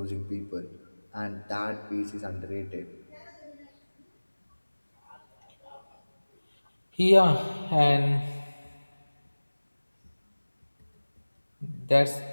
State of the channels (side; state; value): both; inverted; correlation -1.00